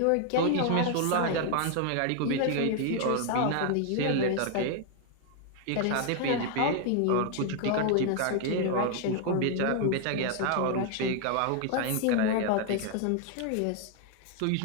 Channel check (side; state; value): both; different; correlation 0.00